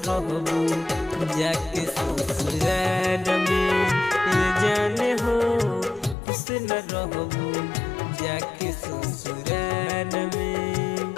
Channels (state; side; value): drops out; right; at 6.2 s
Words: रहबू जाके ससुराल में जाने हो खुश न रहबू जाके ससुराल में